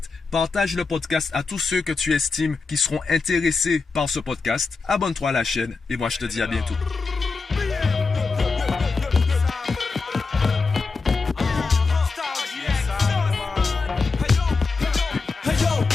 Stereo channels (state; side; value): quieter; right; 4.3 dB